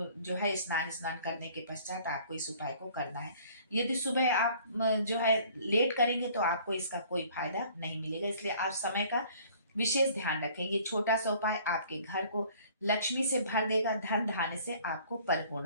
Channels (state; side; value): inverted; both; correlation -0.54